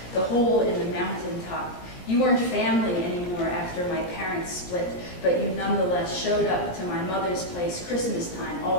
the hole in the mountain top. You weren't family anymore after my parents split, but you nonetheless showed up to my mother's place Christmas time,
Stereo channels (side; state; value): right; late; 17 ms